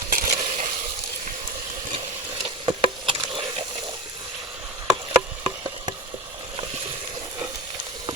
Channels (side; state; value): both; normal; correlation 0.25